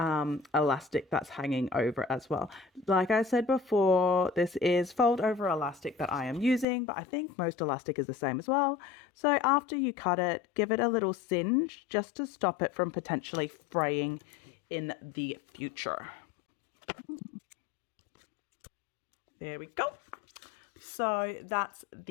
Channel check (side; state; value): right; drops out; at 6.7 s